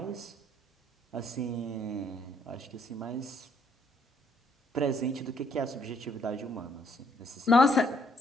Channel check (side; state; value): both; normal; correlation 0.67